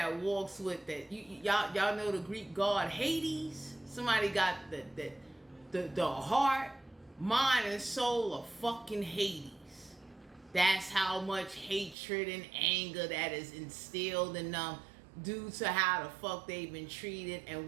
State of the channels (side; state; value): left; drops out; at 12.0 s